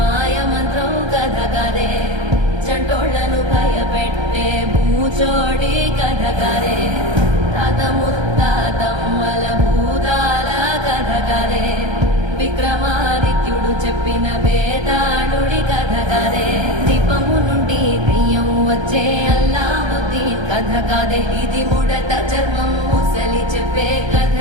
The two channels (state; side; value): late; left; 1.3 ms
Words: మంత్రం కథ కదే, చంటోళ్లను భయపెట్టే భూచోడి కథ కదే, తాత ముత్తాతమ్మల భూతాల కథ కదే, విక్రమాదిత్యుడు చెప్పిన వేదాళుడి కథ కదే, దీపము నుండి బియ్యం వచ్చే అల్లావుద్దీన్ కథ కదే, ఇది ముడత చర్మం ముసలి చెప్పే కథ